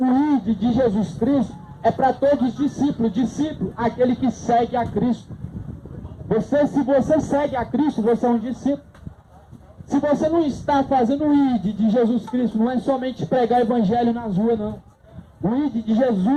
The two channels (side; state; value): both; identical; correlation 1.00